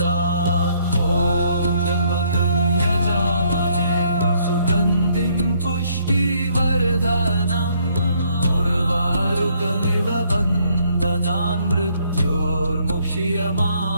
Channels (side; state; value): both; inverted; correlation -0.68